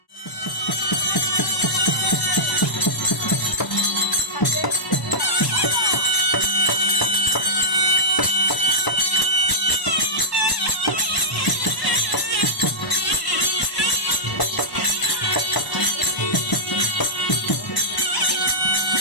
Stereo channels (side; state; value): right; late; 1.0 ms